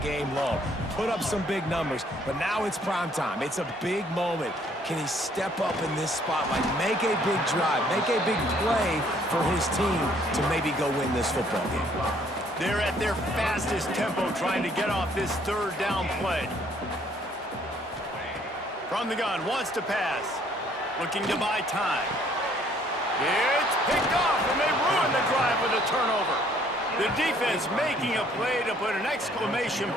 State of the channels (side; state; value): both; normal; correlation 0.63